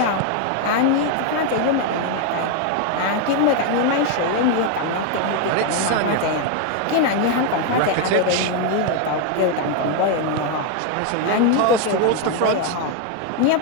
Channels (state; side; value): different; both; correlation 0.01